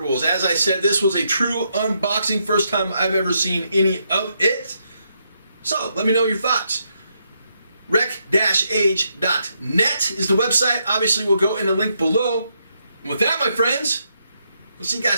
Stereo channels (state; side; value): inverted; both; correlation -0.78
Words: As I said, this was a true unboxing, first time I've ever seen any of it. So, let me know your thoughts. Rec-age.net is the website. Obviously, we'll go in the link below. And with that, my friends, we'll see you